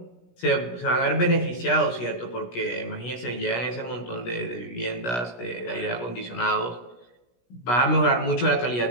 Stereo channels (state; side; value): late; right; 17 ms